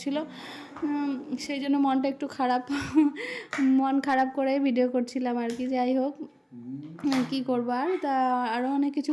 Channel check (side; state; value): both; identical; correlation 1.00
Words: সেই জন্য মনটা একটু খারাপ, মন খারাপ করে ভিডিও করছিলাম আর কি। যাই হোক, কী করবো আর। তা আরও অনেক কিছু